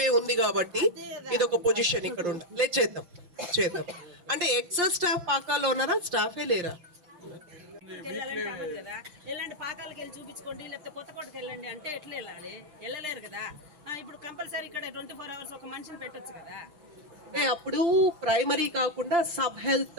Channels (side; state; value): left; late; 5.7 ms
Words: ఉంది కాబట్టి ఇది ఒక పొజిషన్ ఇక్కడ ఉండాలి. లేదు చేద్దాం. అంటే ఎక్సెస్ స్టాఫ్ పాకాల్లో ఉన్నారా? స్టాఫే లేరా? ఎలాంటి పాకాలకు వెళ్ళి చూపించుకోండి, లేకపోతే కొత్తకోటకి వెళ్ళండి అంటే ఎట్లా వెళ్ళాలి? వెళ్ళలేరు కదా. ఇప్పుడు కంపల్సరీ ఇక్కడ 24 hours ఒక మనిషిని పెట్టొచ్చు కదా. అప్పుడు ప్రైమరీ కాకుండా సబ్